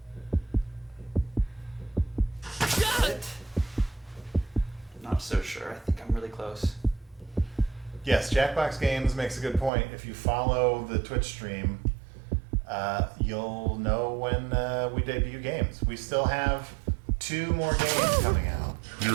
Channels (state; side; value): drops out; left; at 9.7 s